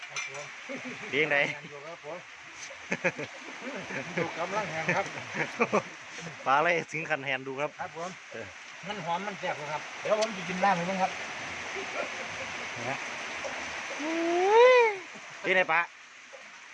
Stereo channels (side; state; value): both; identical; correlation 1.00